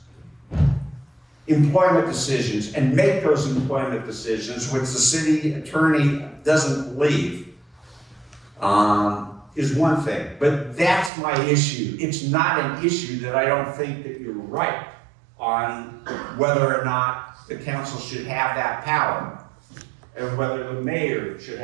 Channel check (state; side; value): drops out; left; at 11.1 s